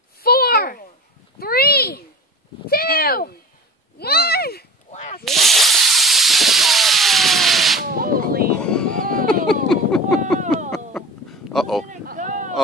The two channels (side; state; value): both; normal; correlation 0.35